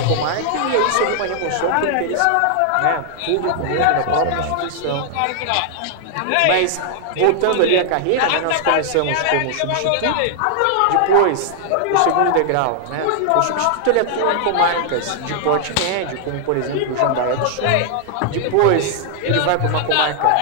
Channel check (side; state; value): both; different; correlation 0.00